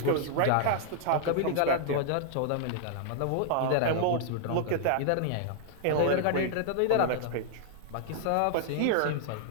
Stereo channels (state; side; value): different; both; correlation -0.01